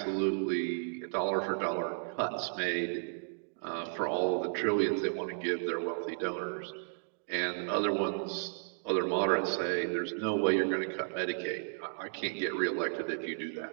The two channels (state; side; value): silent; left; digital silence